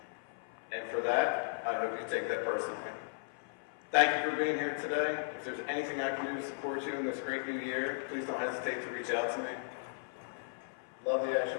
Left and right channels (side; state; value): right; silent; 54 dB below the other